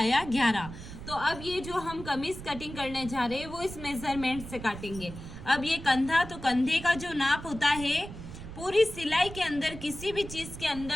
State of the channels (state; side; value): noise; right; rumble, 12 dB below the sound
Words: 11। तो अब ये जो हम कमीज कटिंग करने जा रहे हैं वो इस मेजरमेंट से काटेंगे। अब ये कंधा, तो कंधे का जो नाप होता है पूरी सिलाई के अंदर किसी भी चीज के